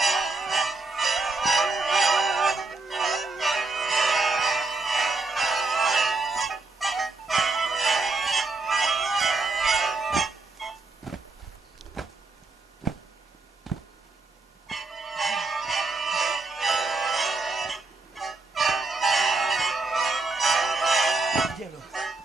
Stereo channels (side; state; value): left; quieter; 3.6 dB